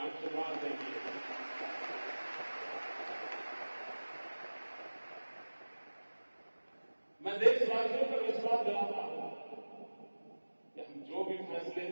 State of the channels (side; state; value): both; inverted; correlation -1.00